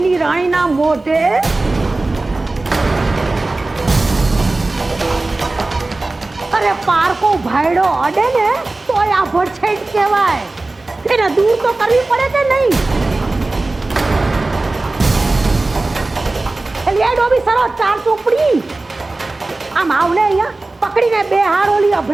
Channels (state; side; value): quieter; left; 3.1 dB